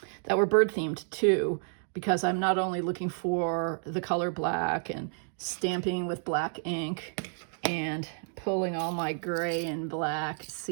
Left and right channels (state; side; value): silent; left; 58 dB below the other